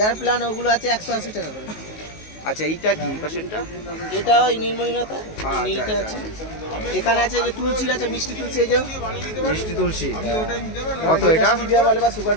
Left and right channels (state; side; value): late; right; 19 ms